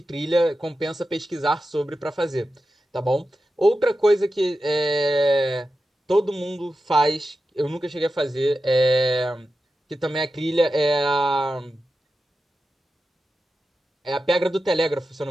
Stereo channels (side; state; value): both; normal; correlation 0.91